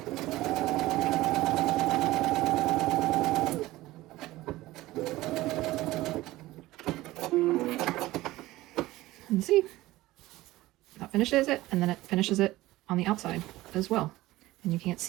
And see, that finishes it, and then it finishes it on the outside as well. And you can't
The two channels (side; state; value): left; quieter; 17.6 dB